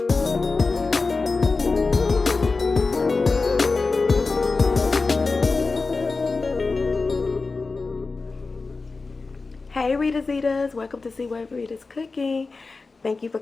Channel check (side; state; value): right; quieter; 4.0 dB